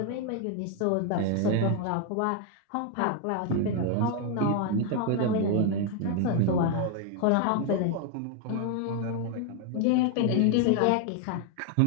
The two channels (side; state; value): both; different; correlation 0.01